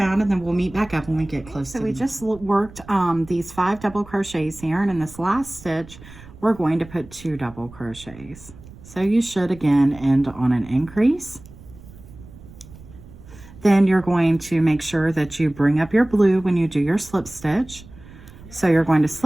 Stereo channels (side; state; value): right; noise; rumble, 19 dB below the sound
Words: and then we'll meet back up when we get close. So we just worked these 5 double crochets here, and in this last stitch we're going to put 2 double crochets. So you should again end on an increase. Then you're going to make sure that you bring up your blue when you do your slip stitch. So you're going to